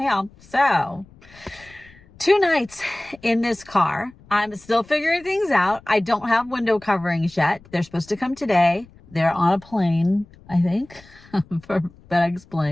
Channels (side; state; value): left; noise; rumble, 25 dB below the sound